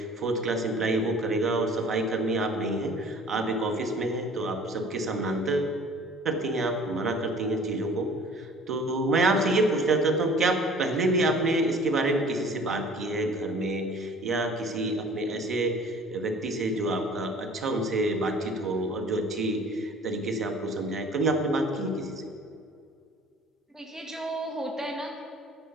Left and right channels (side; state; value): both; normal; correlation 0.49